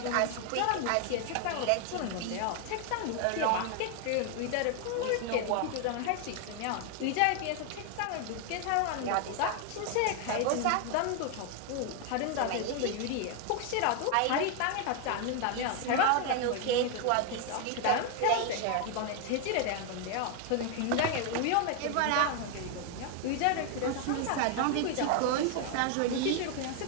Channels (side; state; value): both; different; correlation 0.01